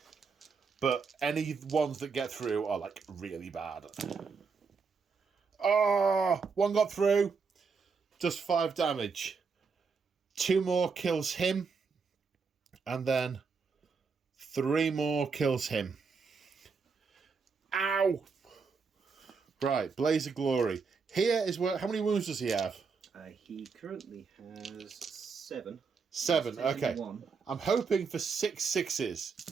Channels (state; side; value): quieter; left; 5.2 dB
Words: But any ones that get through are, like, really bad. Oh, 1 got through. Does 5 damage. 2 more kills him. And then 3 more kills him. Ow! Right, Blaze of Glory. Here is where... How many wounds does he have? He currently has 7. 7, okay. 1. I'm hoping for 6 6s.